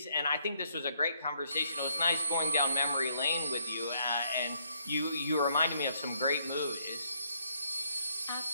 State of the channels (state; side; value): inverted; both; correlation -0.71